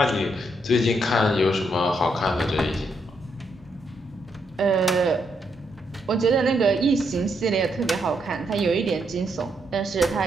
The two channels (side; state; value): both; normal; correlation 0.77